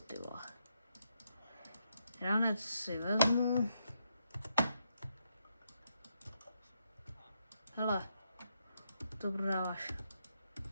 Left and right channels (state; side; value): inverted; both; correlation -0.79